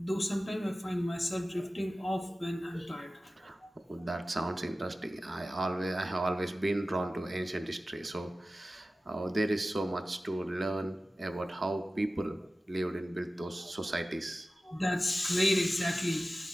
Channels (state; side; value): normal; both; correlation 0.95